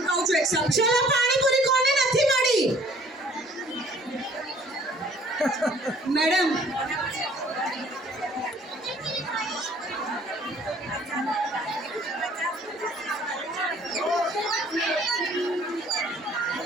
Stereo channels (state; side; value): normal; both; correlation 0.56